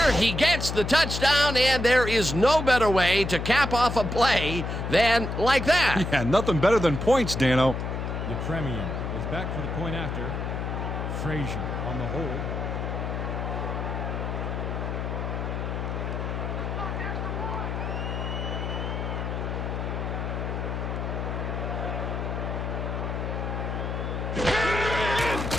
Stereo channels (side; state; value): left; noise; hum, 3 dB below the sound